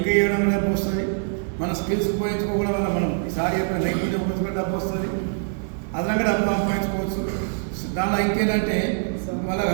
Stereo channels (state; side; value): silent; left; 63 dB below the other